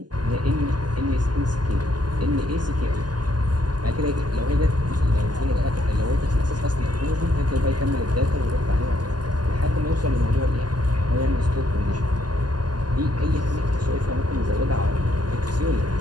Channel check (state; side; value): late; left; 0.70 ms